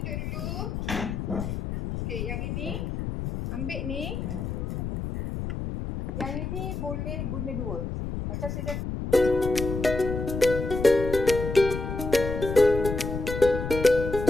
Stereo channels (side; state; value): left; noise; rumble, 4 dB below the sound